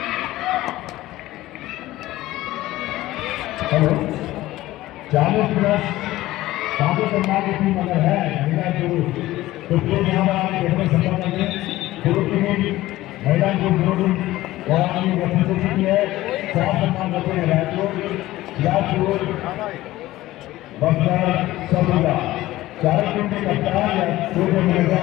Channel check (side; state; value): right; quieter; 16.5 dB